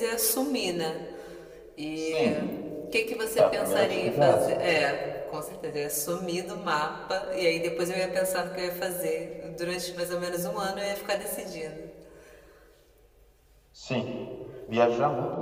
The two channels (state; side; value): identical; both; correlation 1.00